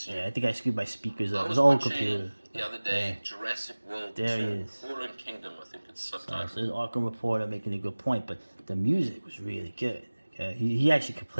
Yeah, I think I screwed my speakers up. I It's was an old watching computer. the other day Yeah. Jurassic World There 2, he is. Fallen Kingdom, I think it's So subtitled. there's Arkham Reporter making a good point, but the music was really good. Okay? He actually could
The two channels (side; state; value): both; inverted; correlation -1.00